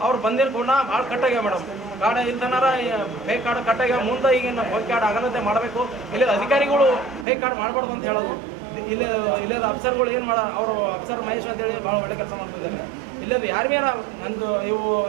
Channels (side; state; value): left; drops out; at 7.2 s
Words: ಅವ್ರು ಬಂದಿರೋ ಕೂಡ ಭಾಳ ಕಟ್ಟಾಗ್ಯಾವ ಮೇಡಮ್. ಕಾರ್ಡ್ ಇಲ್ತನಾರ ಫೇಕ್ ಕಾರ್ಡ್ ಕಟ್ಟಾಗ್ಯಾವ. ಮುಂದೆ ಈಗಿನ ಫೇಕ್ ಕಾರ್ಡ್ ಆಗಲಂತೆ ಮಾಡಬೇಕು. ಇಲ್ಲಿ ಅಧಿಕಾರಿಗಳು ಫೇಕ್ ಕಾರ್ಡ್ ಮಾಡಬಾರ್ದು ಅಂತ ಹೇಳೋದು. ಇಲ್ಲದ ಅಫ್ಸರ್ಗಳು ಏನು ಅವರು ಅಫ್ಸರ್ ಮಹೇಶ್ ಅಂತೇಳಿ ಭಾಳ ಒಳ್ಳೆ ಕೆಲಸ ಮಾಡ್ತಿದ್ದಾರೆ. ಇಲ್ಲದು ಯಾರು ನಂದು ಇವು